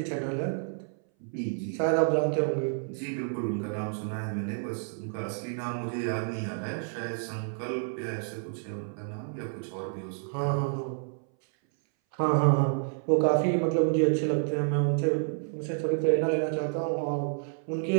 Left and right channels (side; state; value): left; silent; 58 dB below the other